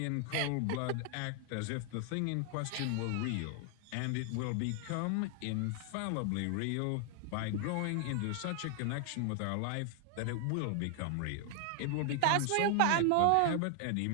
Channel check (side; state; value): both; different; correlation 0.00